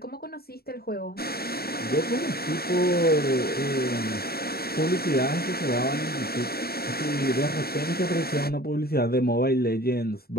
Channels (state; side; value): late; right; 0.45 ms